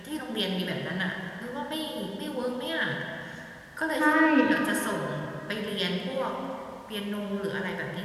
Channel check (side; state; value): both; identical; correlation 1.00